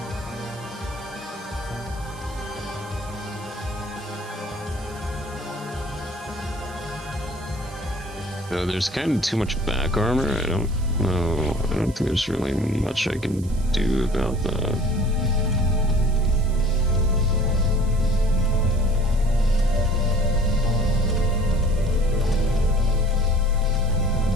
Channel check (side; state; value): right; noise; hiss, 21 dB below the sound